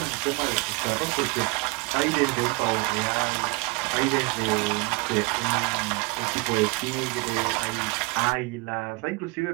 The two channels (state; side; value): quieter; left; 26.8 dB